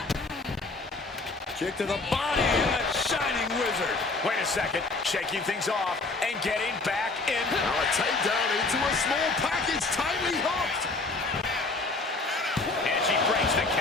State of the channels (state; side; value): quieter; right; 3.5 dB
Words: Kick to the body and a shining wizard. Wait a second, shaking things off and getting back in. Now a takedown into a small package, tightly hooked. And she breaks the